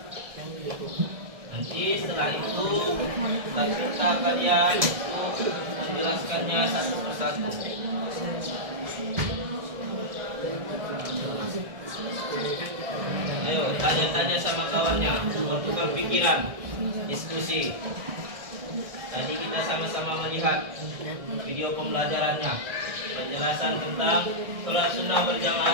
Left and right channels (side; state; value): left; late; 1.6 ms